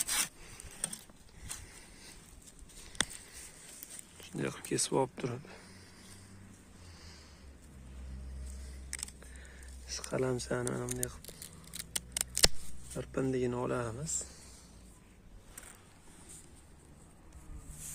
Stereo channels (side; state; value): both; identical; correlation 1.00